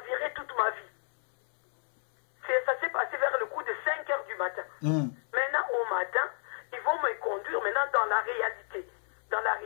toute ma vie. Ça s'est passé vers le coup de 5 h du matin. Maintenant, au matin, ils vont conduire maintenant dans la réalité. Dans la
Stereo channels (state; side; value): silent; right; 57 dB below the other